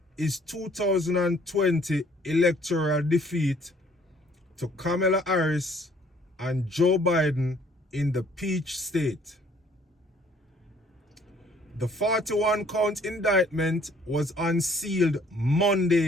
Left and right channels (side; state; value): both; normal; correlation 0.60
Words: his 2020 electoral defeat to Kamala Harris and Joe Biden in the Peach State. The 41-count indictment was unsealed